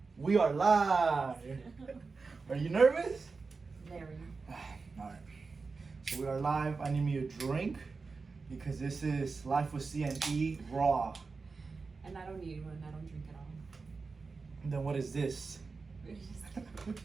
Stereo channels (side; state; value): left; quieter; 4.4 dB